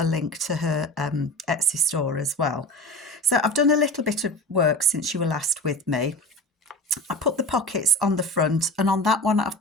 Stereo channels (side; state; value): both; normal; correlation 0.31